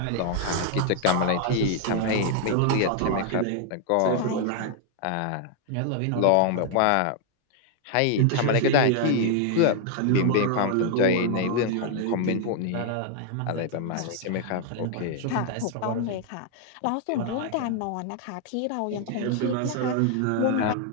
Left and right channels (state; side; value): different; both; correlation 0.00